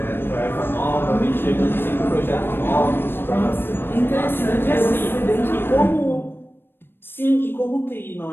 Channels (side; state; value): right; late; 0.10 ms